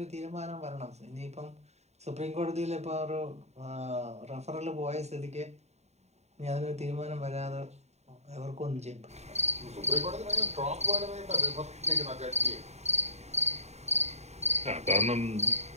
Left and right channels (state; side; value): late; left; 0.32 ms